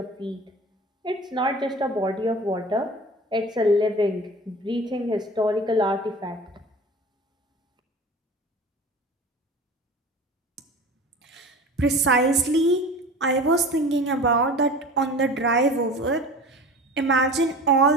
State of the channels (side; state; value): both; normal; correlation 0.38